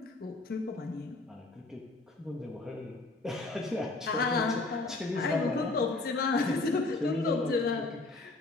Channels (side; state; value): right; quieter; 3.2 dB